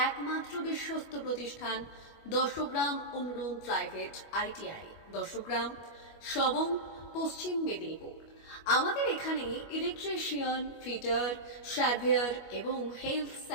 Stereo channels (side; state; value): right; late; 25 ms